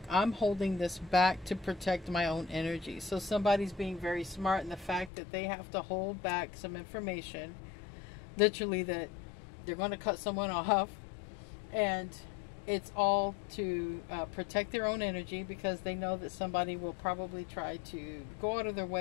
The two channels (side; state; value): right; drops out; at 5.1 s